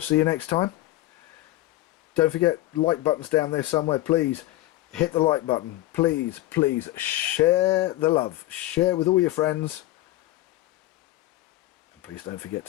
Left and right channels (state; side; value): quieter; right; 16.7 dB